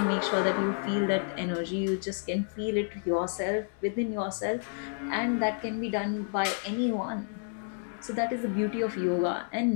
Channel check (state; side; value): silent; right; 55 dB below the other